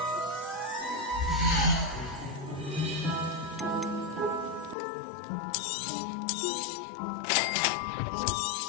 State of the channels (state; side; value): drops out; right; at 4.8 s